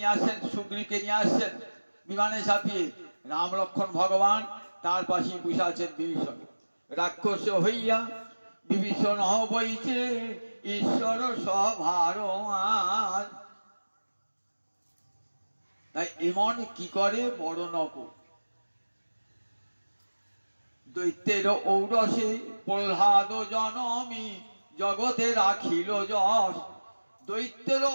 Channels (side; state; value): both; inverted; correlation -1.00